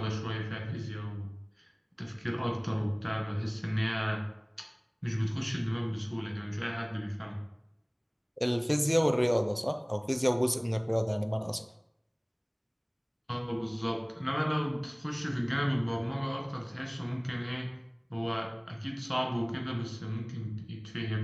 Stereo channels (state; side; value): identical; both; correlation 1.00